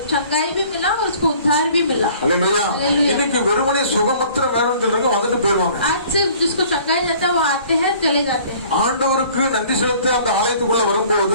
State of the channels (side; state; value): both; inverted; correlation -0.52